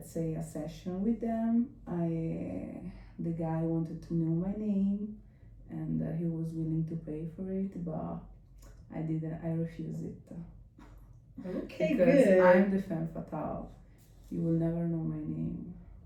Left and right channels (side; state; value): both; identical; correlation 1.00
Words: say, a session with them, the guy wanted to know my name, and he was willing to pay for it, but I didn't. I refused it. Okay, Because good. I'm the femme fatale. You will never know my name.